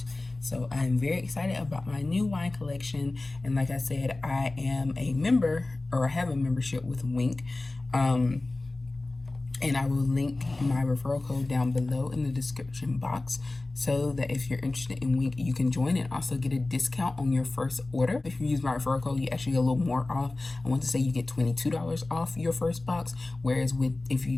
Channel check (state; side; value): quieter; right; 3.0 dB